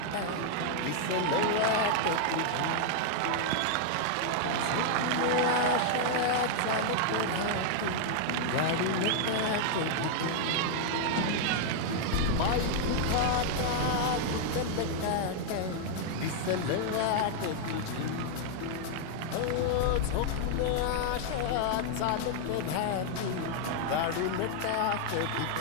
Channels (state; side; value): different; both; correlation 0.00